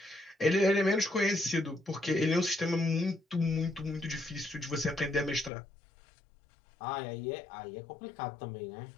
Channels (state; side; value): drops out; right; at 5.5 s